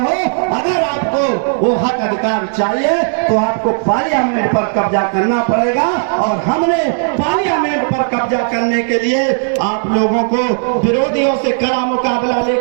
अगर आपको वो हक अधिकार चाहिए तो आपको पार्लियामेंट पर कब्जा करना पड़ेगा। और हमने पार्लियामेंट पर कब्जा करने के लिए आप लोगों को विरोधियों से कड़ा मुकाबला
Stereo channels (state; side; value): silent; left; digital silence